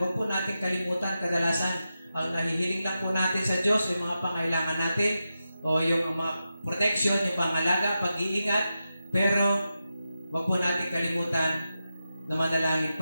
po natin kalimutan, kadalasan ang nahihiling lang po natin sa Diyos, yung mga pangailangan natin, o yung mga protection, yung pangalaga, pag-iingat, pero wag po natin kalimutan na manalangin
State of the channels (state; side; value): inverted; both; correlation -0.90